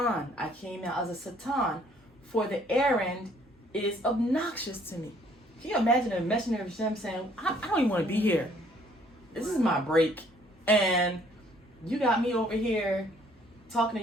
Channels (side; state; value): both; normal; correlation 0.62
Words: I came out as a Satan, for the errand is obnoxious to me." Can you imagine a messenger of Hashem saying, I don't even want to be here. This is my break. And you got me over here talking